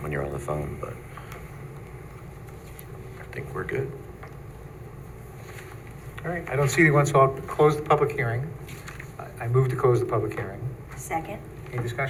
when you're on the phone, but I think we're good. All right, I don't see anyone, so I'll close the public hearing. I move to close the public hearing. Second? Any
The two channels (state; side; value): identical; both; correlation 1.00